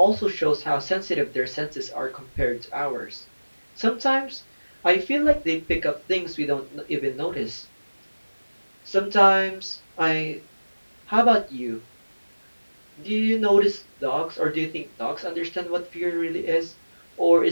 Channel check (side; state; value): both; inverted; correlation -1.00